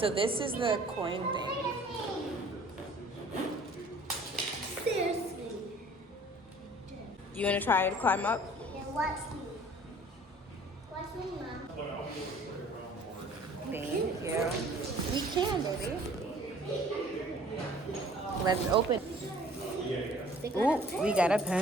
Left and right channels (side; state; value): both; normal; correlation 0.52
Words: this is the coin thing. Seriously. You wanna try to climb up? Yeah, watch me. Watch me, Mom. Thank you. We can, baby. Let's open. Ooh, we got a